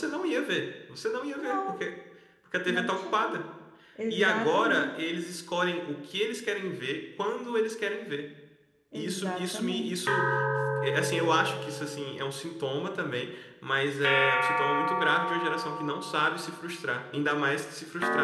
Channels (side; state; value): both; identical; correlation 1.00